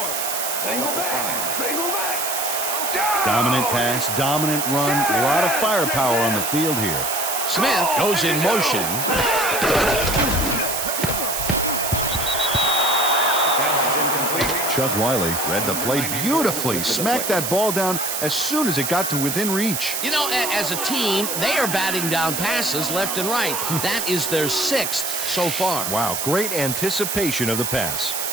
Ball up to 5. Dominant pass, dominant run, a lot of firepower on the field here. Smith goes in motion. Chuck Wiley read the play beautifully, smacked that ball down as soon as it got to within reach. You know, as a team, they are batting down passes left and right. That is their 6th so far. Wow, great anticipation of the pass.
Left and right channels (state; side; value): noise; right; hiss, 2 dB below the sound